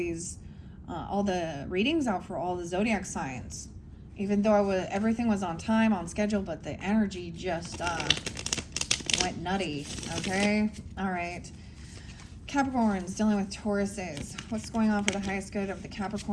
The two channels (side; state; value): both; identical; correlation 1.00